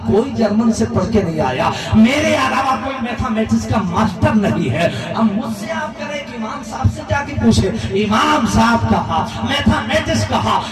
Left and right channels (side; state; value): both; identical; correlation 1.00